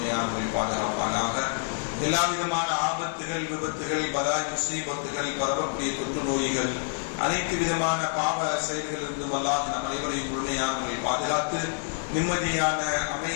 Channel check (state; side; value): silent; right; digital silence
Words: பாதுகாப்பானாக. எல்லா விதமான ஆபத்துகள், விபத்துகள், பலாய் முசீபத்துகள், பரவக்கூடிய தொற்று நோய்கள், அனைத்து விதமான பாவ செயல்களிலிருந்தும் அல்லாஹ் நம் அனைவரையும் முழுமையாக பாதுகாத்து நிம்மதியான,